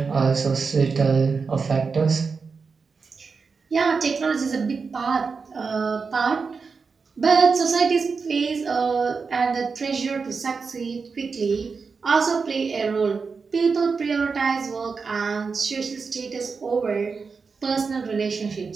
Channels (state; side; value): quieter; left; 5.0 dB